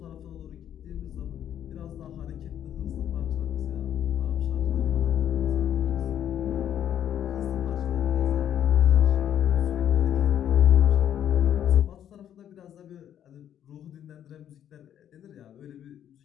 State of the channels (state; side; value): quieter; right; 10.2 dB